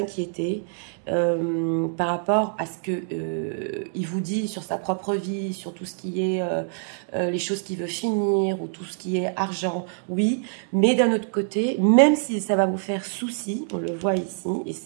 par rapport à ce qu'il vous dit sur sa propre vie, sur tout ce qui est les choses qu'il veut finir ou tout ce qui est argent, oui, mais d'un autre côté, même si ça va vous faire souci, on le voit ici, et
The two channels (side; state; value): left; silent; digital silence